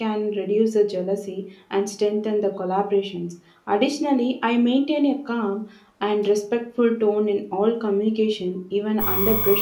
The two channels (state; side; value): identical; both; correlation 1.00